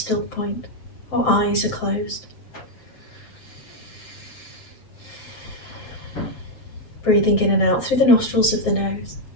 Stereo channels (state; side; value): late; right; 7.6 ms